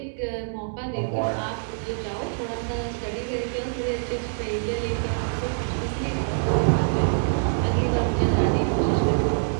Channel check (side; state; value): left; silent; digital silence